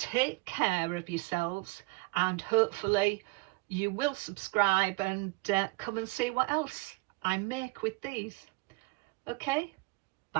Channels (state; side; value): quieter; left; 24.8 dB